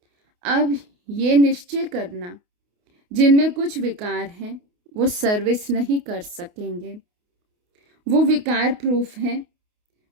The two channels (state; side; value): late; left; 28 ms